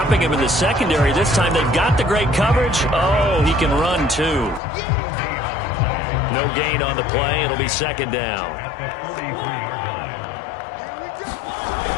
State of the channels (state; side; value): drops out; right; at 4.6 s